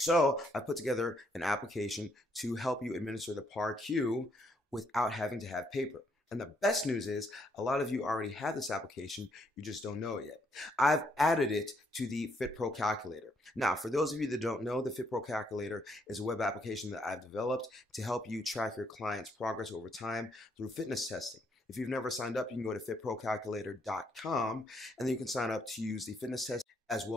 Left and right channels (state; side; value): normal; both; correlation 0.72